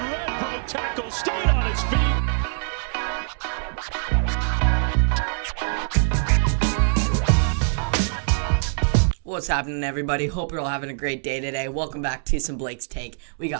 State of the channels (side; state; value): left; silent; digital silence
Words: Red broke tackle, stayed on his feet. What's happening, everybody? Hope you're all having a great day today. Welcome back to some Blake's Take. We